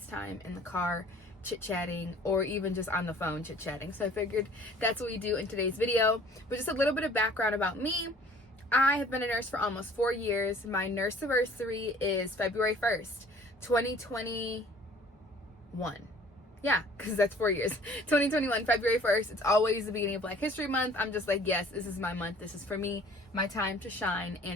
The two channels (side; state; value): both; normal; correlation 0.51